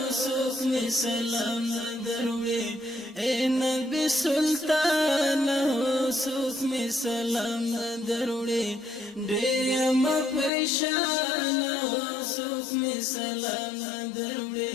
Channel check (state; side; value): drops out; right; at 10.5 s